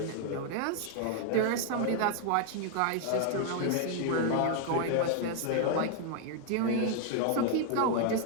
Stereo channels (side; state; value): both; different; correlation 0.00